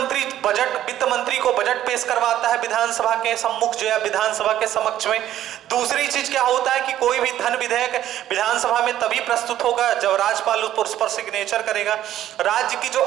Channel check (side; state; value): left; quieter; 12.3 dB